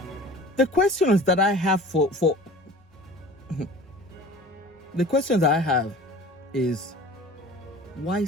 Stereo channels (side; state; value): both; normal; correlation 0.42